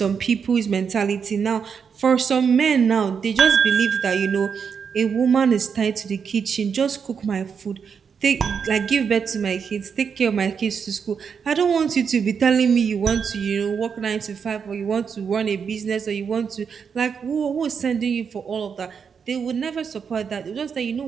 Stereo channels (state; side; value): quieter; left; 6.5 dB